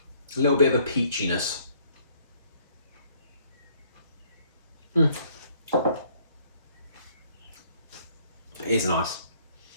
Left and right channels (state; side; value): inverted; both; correlation -0.63